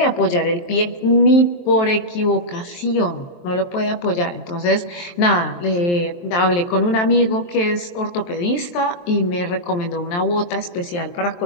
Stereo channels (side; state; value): right; late; 23 ms